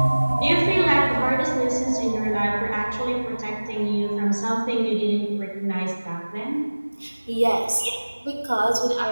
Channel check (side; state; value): both; inverted; correlation -1.00